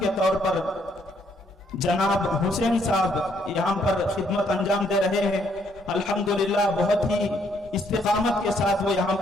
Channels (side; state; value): both; normal; correlation 0.70